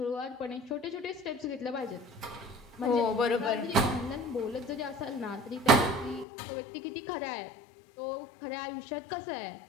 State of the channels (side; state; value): right; drops out; at 6.2 s